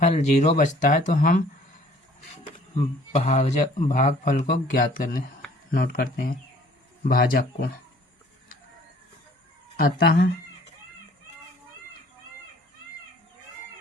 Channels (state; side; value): normal; both; correlation 0.55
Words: 0 बचता है तो हम भागफल को ज्ञात करने नोट करते हैं, भाजक को। अतः